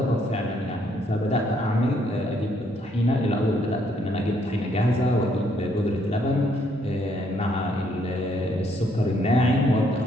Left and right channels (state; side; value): normal; both; correlation 0.70